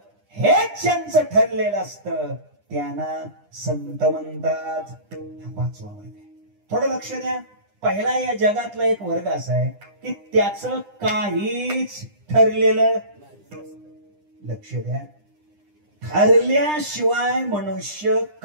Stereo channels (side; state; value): left; late; 9.9 ms